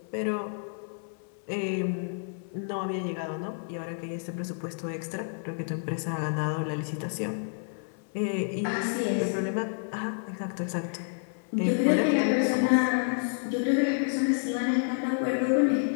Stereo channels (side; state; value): right; silent; 58 dB below the other